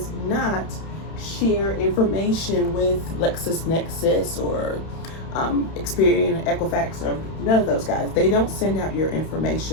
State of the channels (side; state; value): right; late; 31 ms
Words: not share information with LexisNexis or Experian, Equifax, or none of those guys. They don't send out your